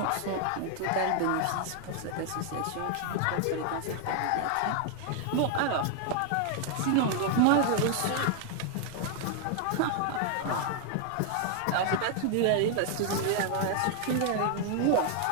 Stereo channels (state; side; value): different; both; correlation 0.00